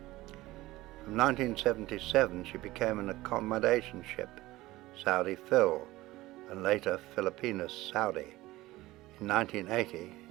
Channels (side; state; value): left; quieter; 18.1 dB